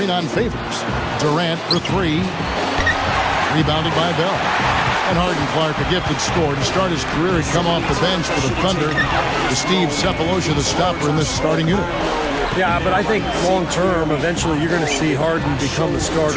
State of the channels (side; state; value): both; identical; correlation 1.00